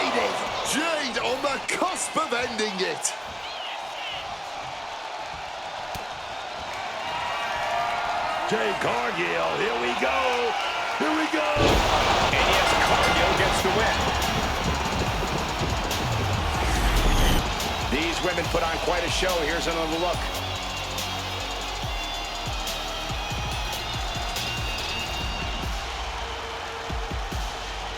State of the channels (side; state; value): both; identical; correlation 1.00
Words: Jade on the cusp of ending it. Jade Cargill, here we go. Here we go. And yes, Cargill gets the win. These women put on quite a show. Here's another look.